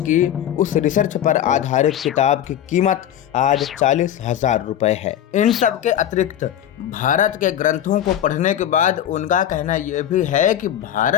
उस रिसर्च पर आधारित किताब की कीमत आज 40,000 रुपए है। इन सब के अतिरिक्त भारत के ग्रंथों को पढ़ने के बाद उनका कहना यह भी है कि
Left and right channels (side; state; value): right; quieter; 10.8 dB